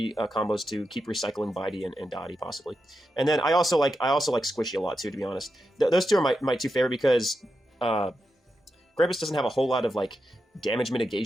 combos to keep recycling Bitey and Dottie possibly. And then I also like Squishy a lot too, to be honest. Those two are my 2 favorite because Krampus doesn't have a whole lot of like damage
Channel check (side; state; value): both; normal; correlation 0.87